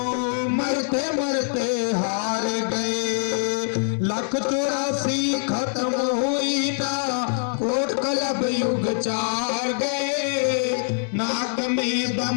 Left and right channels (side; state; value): right; silent; digital silence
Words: मरते मरते हार गए। 184 खत्म हुई ना, कोट कलब युग 4 गए, नाक में